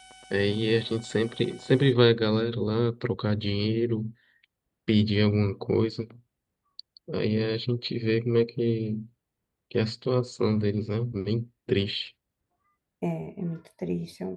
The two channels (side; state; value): both; identical; correlation 1.00